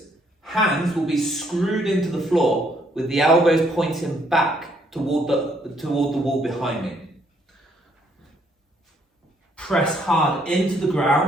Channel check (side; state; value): both; normal; correlation 0.69